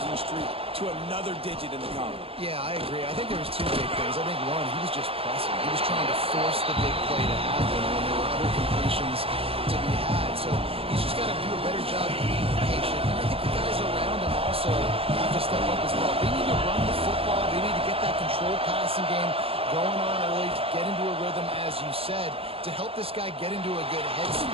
streak to another digit in the column. Yeah, I agree. I think there was 2 big things. I think one, he was just pressing. He was trying to force the big play to happen when there were other completions to be had. So he's just got to do a better job of being patient. And I think the guys around him also have to step up as well. They need to run the football. They need to get that controlled passing game going on early, to get into a rhythm, as you said, to help this guy get into a good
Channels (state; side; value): late; left; 0.27 ms